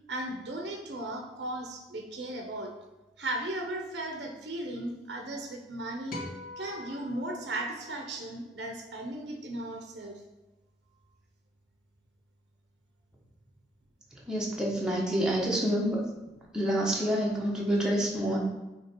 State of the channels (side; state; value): both; normal; correlation 0.64